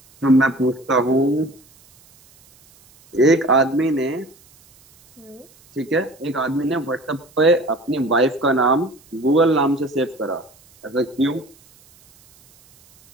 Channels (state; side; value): noise; right; hiss, 29 dB below the sound